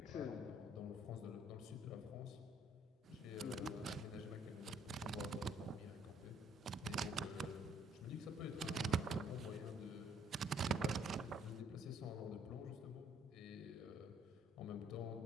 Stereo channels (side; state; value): both; normal; correlation 0.64